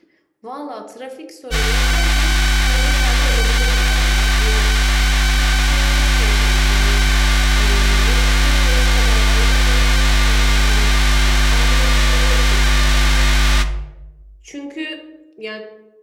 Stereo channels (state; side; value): identical; both; correlation 1.00